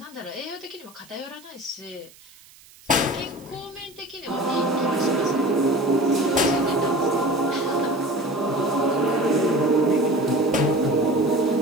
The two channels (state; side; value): noise; right; hiss, 25 dB below the sound